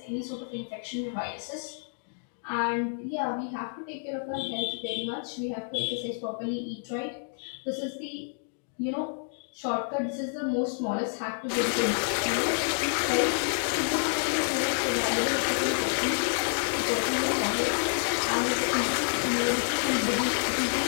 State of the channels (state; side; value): silent; right; digital silence